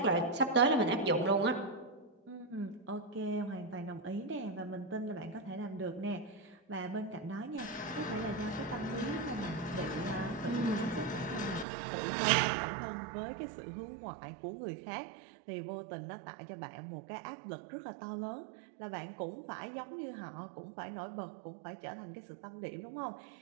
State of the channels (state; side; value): drops out; left; at 11.7 s